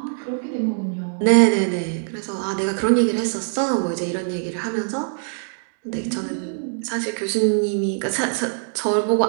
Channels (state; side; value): silent; left; digital silence